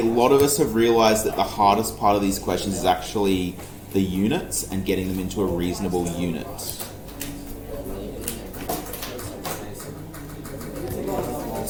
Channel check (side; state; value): both; identical; correlation 1.00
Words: lot of us have realised that the hardest part of these questions is actually the units and getting them into a reasonable unit.